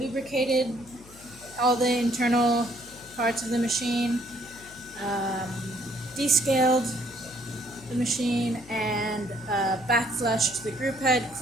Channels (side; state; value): left; noise; hum, 22 dB below the sound